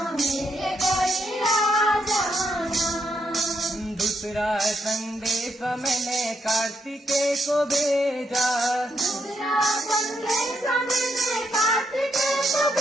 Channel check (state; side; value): normal; both; correlation 0.78